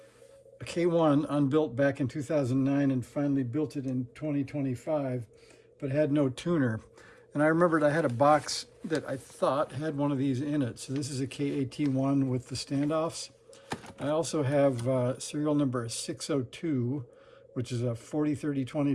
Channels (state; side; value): identical; both; correlation 1.00